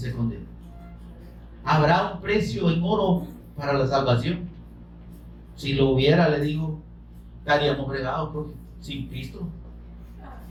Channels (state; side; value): identical; both; correlation 1.00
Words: condena? ¿Habrá un precio en oro para la salvación? Si lo hubiera, le digo, estaríamos fregados porque sin Cristo.